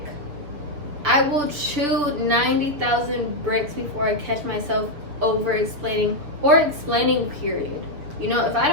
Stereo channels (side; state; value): left; late; 6.9 ms